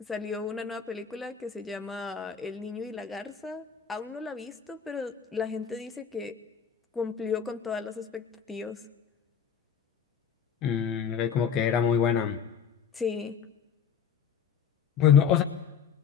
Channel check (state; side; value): quieter; right; 7.4 dB